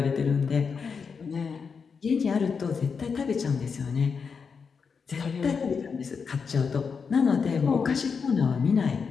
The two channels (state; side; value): quieter; right; 5.7 dB